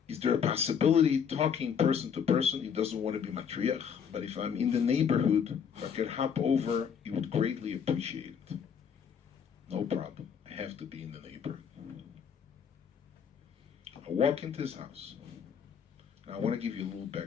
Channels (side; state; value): right; quieter; 7.3 dB